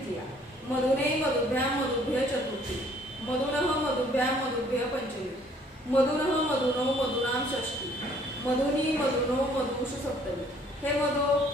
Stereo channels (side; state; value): both; normal; correlation 0.60